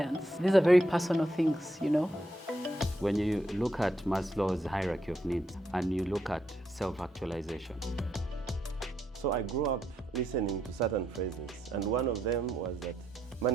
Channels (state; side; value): normal; both; correlation 0.79